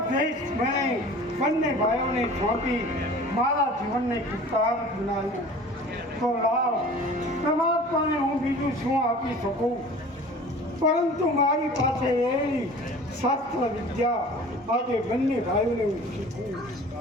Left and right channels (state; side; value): normal; both; correlation 0.43